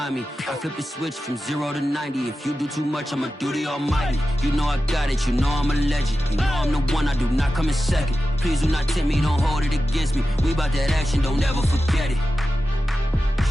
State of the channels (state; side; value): normal; both; correlation 0.92